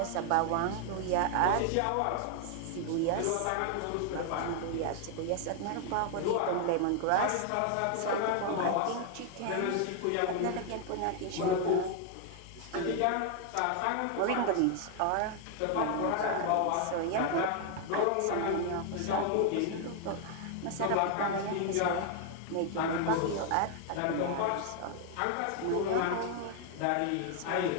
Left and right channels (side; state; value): both; different; correlation 0.00